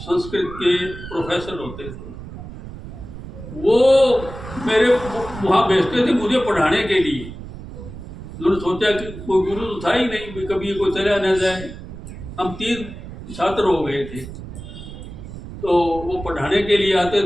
के प्रोफेसर होते थे, वो मेरे वहाँ भेजते थे मुझे पढ़ाने के लिए। उन्होंने सोचा कि कोई गुरु तो था ही नहीं, कभी कोई चला न जाए। हम 3 छात्र हो गए थे, तो वो पढ़ाने के लिए आते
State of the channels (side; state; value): right; noise; rumble, 12 dB below the sound